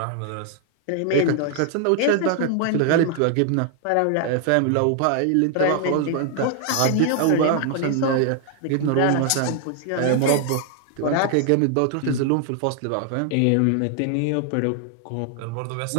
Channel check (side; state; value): both; different; correlation 0.00